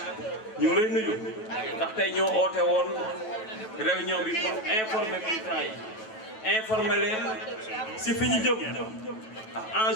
ñu ngi lay nuyu ndax tey ñoo oote woon réunion bi pour informer militants yi informer leen ci fi ñu jëm ak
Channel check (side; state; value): right; late; 9.2 ms